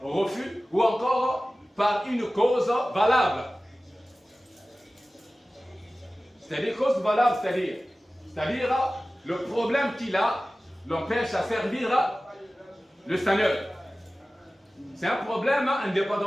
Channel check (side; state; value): both; normal; correlation 0.96